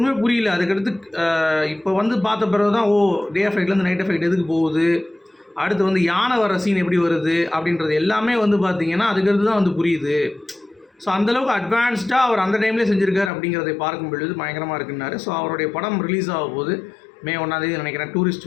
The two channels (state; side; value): drops out; right; at 13.3 s